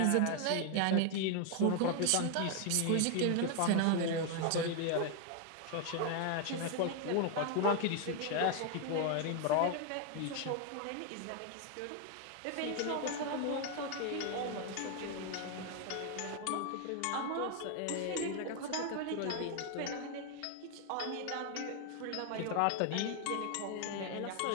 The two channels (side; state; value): both; different; correlation 0.00